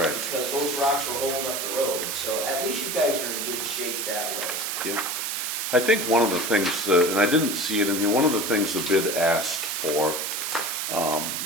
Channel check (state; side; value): noise; right; hiss, 2 dB below the sound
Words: Because those rocks were holding up the road, so at least you guys are in good shape that way. Yep. I think one of the things, and I didn't see it in here, one of the things the bid asked for